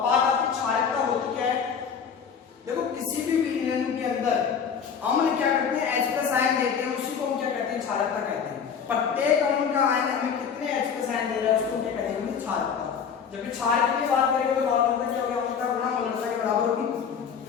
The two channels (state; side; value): quieter; right; 6.9 dB